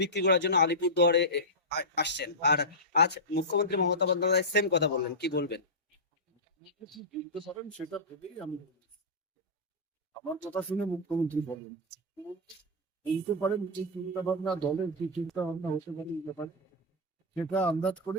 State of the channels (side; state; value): both; normal; correlation -0.11